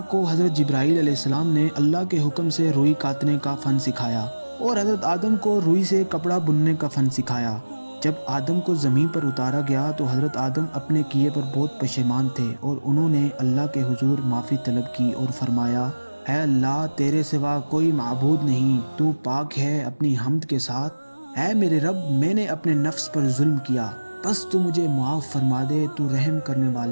حضرت جبرائیل علیہ السلام نے اللہ کے حکم سے روئی کاٹنے کا فن سکھایا اور حضرت آدم کو روئی سے کپڑا بننے کا فن سکھایا۔ جب آدم کو زمین پر اتارا گیا تو حضرت آدم اپنے کیے پر بہت پشیمان تھے اور انہوں نے اللہ کے حضور معافی طلب کی اور فرمایا، اے اللہ، تیرے سوا کوئی معبود نہیں، تو پاک ہے اپنی حمد کے ساتھ۔ اے میرے رب، میں نے اپنے نفس پر ظلم کیا، بس تو مجھے معاف فرما دے، تو رحم کرنے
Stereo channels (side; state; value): both; inverted; correlation -1.00